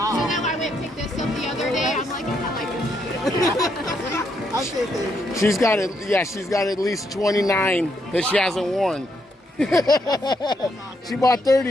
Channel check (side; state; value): both; normal; correlation 0.76